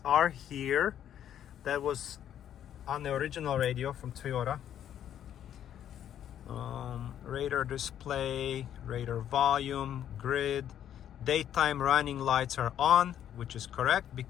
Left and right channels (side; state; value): right; quieter; 10.3 dB